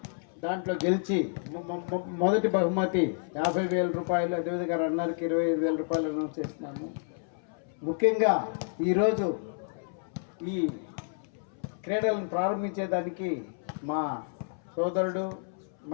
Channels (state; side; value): silent; right; 58 dB below the other